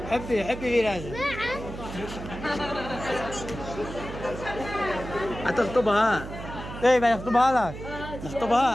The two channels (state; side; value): noise; right; hum, 10 dB below the sound